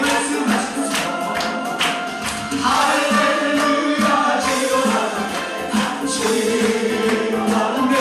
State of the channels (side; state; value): both; identical; correlation 1.00